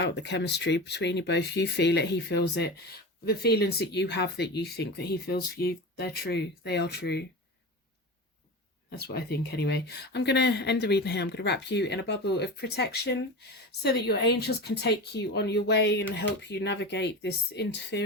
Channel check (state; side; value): normal; both; correlation 0.27